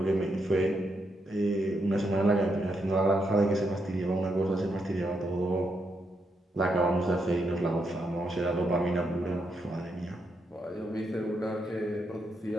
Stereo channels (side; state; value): both; normal; correlation 0.80